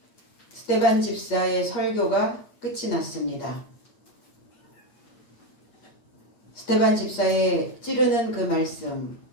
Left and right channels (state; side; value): late; right; 8.4 ms